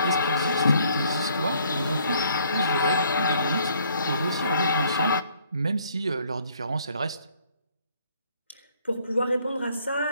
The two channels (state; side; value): inverted; both; correlation -0.63